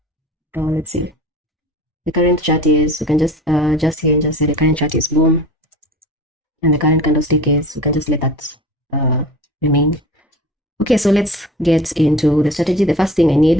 Let's see. The current chart is, we can just here and just say the current chart is boom, and the current candlestick is, we can just let that remain. Okay, so let's get into the strategy. The first thing I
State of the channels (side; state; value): both; normal; correlation 0.39